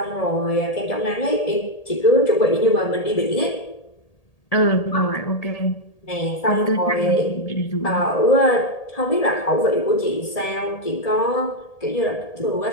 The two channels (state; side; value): late; right; 1.8 ms